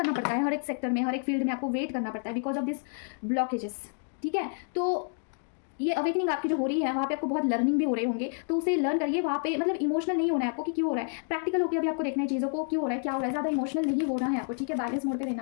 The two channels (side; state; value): right; silent; 56 dB below the other